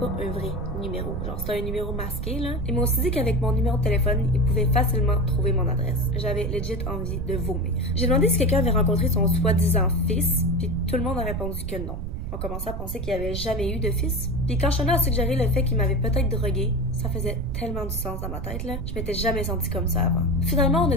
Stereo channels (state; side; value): noise; right; rumble, 5 dB below the sound